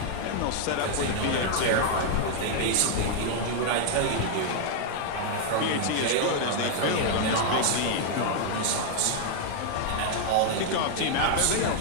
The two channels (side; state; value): both; different; correlation 0.00